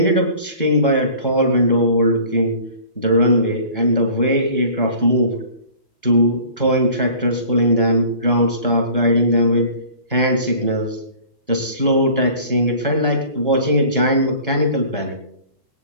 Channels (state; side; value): inverted; both; correlation -0.47